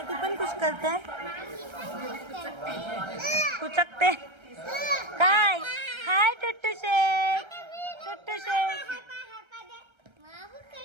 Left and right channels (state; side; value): late; left; 1.3 ms